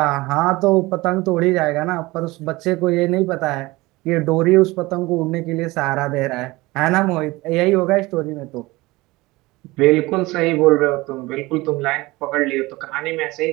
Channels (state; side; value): quieter; left; 21.0 dB